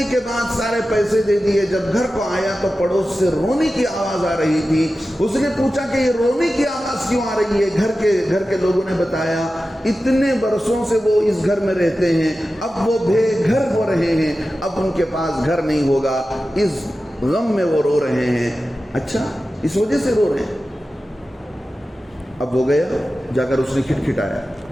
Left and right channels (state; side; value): normal; both; correlation 0.94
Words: کے بعد سارے پیسے دے دیے. جب گھر کو آیا تو پڑوس سے رونے کی آواز آ رہی تھی. اس نے پوچھا کہ یہ رونے کی آواز کیوں آ رہی ہے؟ گھر کے لوگوں نے بتایا اتنے برسوں سے وہ اس گھر میں رہتے ہیں, اب وہ بے گھر ہو رہے ہیں, اب ان کے پاس گھر نہیں ہوگا, اس غم میں وہ رو رہے ہیں. اچھا, اس وجہ سے رو رہے ہیں. اب وہ گیا, جا کر اس نے کھٹکھٹایا.